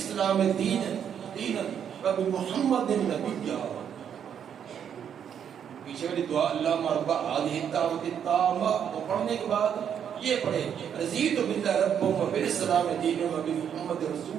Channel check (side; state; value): left; quieter; 8.5 dB